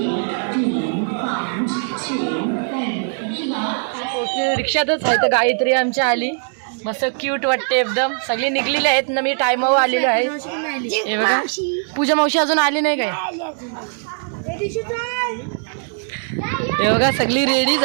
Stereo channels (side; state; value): left; silent; 57 dB below the other